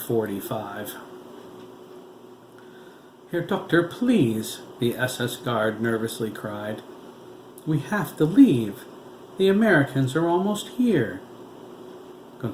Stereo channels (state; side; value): identical; both; correlation 1.00